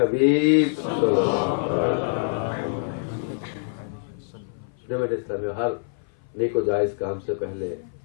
جماعت اسلامی ہر نیک و جائز کام سے پہلے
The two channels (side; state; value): right; silent; 57 dB below the other